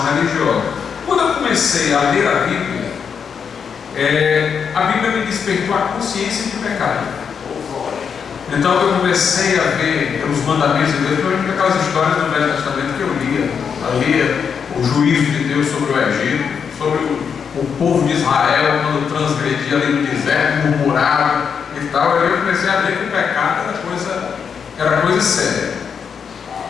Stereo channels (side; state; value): right; quieter; 6.7 dB